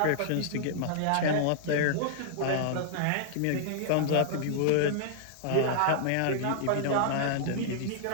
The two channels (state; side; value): different; both; correlation -0.01